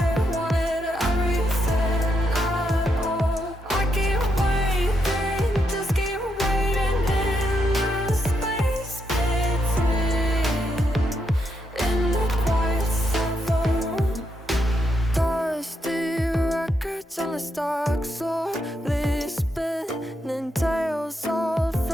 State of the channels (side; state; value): both; normal; correlation 0.80